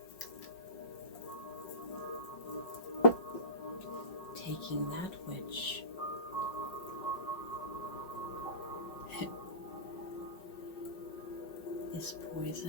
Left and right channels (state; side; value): late; right; 5.4 ms